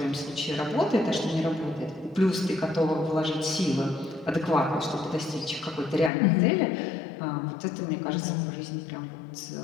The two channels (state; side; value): drops out; right; at 6.1 s